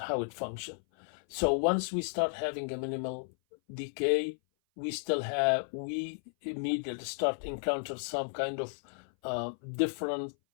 how it functions. So once we start having a minimal decay, we immediately start encounter some kind of different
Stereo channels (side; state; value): right; silent; 55 dB below the other